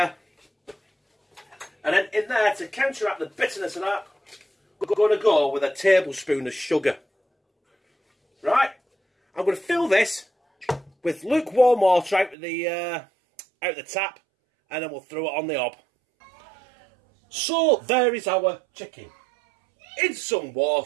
And then in there, to counteract the bitterness of that, we're going to go with a tablespoon of sugar. Right? I'm going to fill this with lukewarm water out of the tap, and then we'll throw it on the hob. So there is our chicken. In some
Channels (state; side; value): drops out; left; at 12.4 s